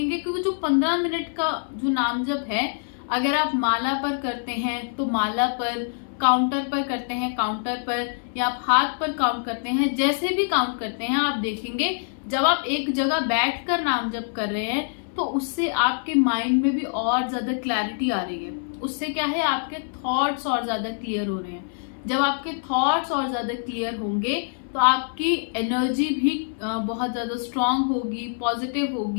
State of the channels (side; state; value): right; silent; 60 dB below the other